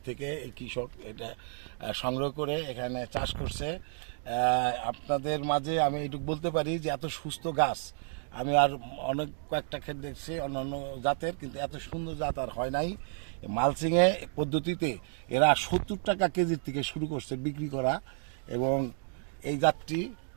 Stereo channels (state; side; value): silent; left; 57 dB below the other